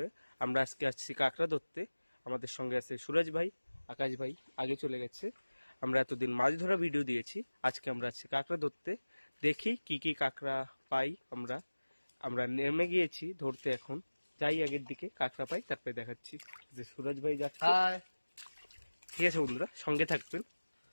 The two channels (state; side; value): inverted; both; correlation -1.00